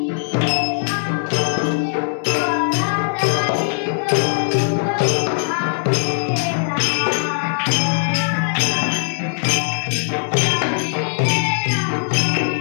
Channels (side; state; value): right; silent; 66 dB below the other